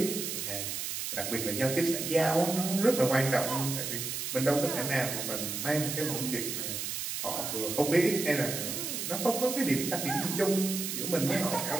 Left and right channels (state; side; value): noise; right; hiss, 4 dB below the sound